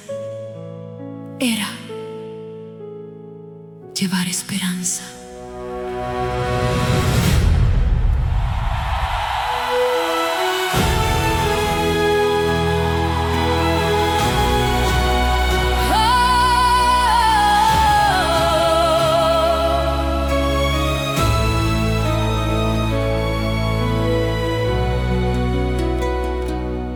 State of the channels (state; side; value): identical; both; correlation 1.00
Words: era llevar esperanza.